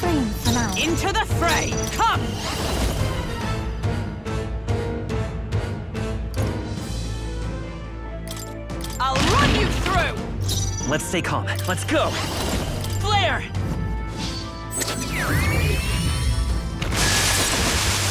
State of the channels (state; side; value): identical; both; correlation 1.00